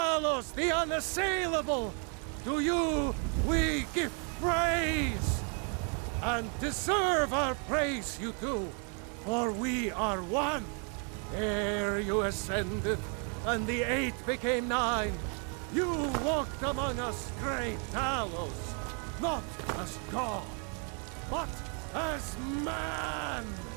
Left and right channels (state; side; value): quieter; left; 39.5 dB